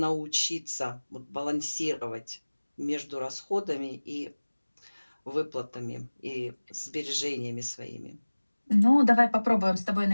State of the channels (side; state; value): both; inverted; correlation -1.00